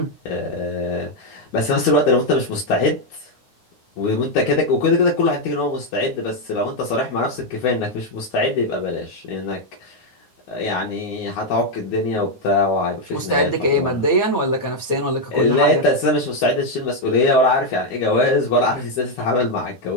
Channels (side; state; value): right; late; 9.4 ms